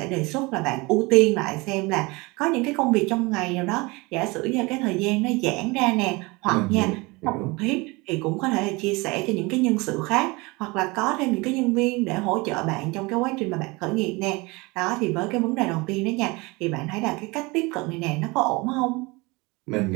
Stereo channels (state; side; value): quieter; left; 24.9 dB